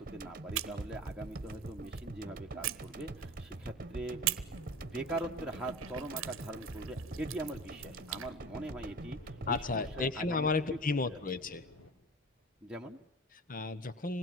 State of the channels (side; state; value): both; normal; correlation 0.34